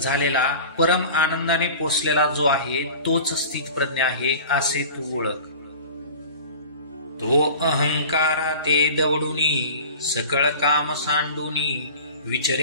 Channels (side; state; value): both; inverted; correlation -0.39